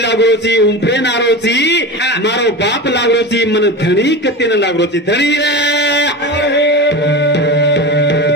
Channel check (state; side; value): normal; both; correlation 0.26